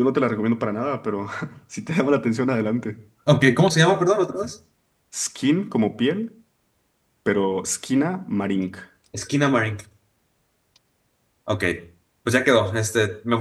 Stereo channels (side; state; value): both; identical; correlation 1.00